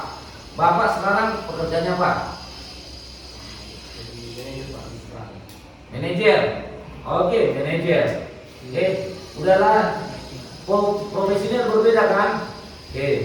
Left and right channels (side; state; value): both; identical; correlation 1.00